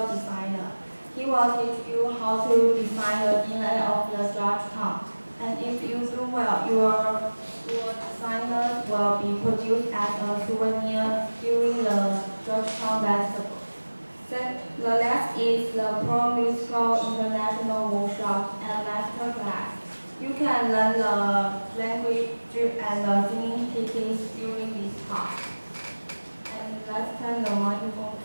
designer. He will teach you how to design the DNA of the Georgetown. And if you do well, your designs will be produced as a souvenir during the Georgetown Festival. The last is the Pro Musical International Workshop and Master Class. You can learn the language and the singing techniques during this part. And let's turn the microphone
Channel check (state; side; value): inverted; both; correlation -1.00